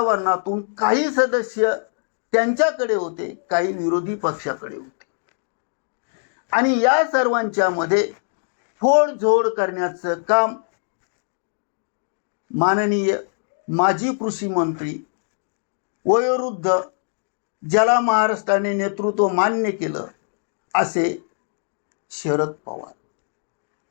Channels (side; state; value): right; silent; digital silence